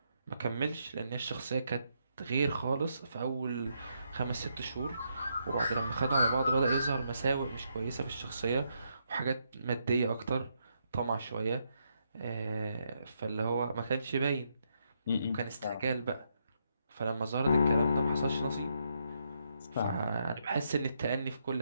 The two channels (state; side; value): inverted; both; correlation -0.78